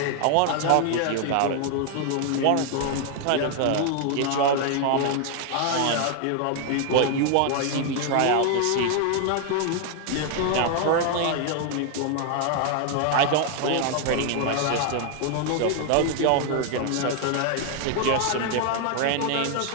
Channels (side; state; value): both; different; correlation 0.00